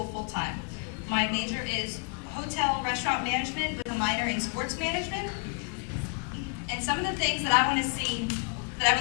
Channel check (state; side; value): quieter; right; 39.1 dB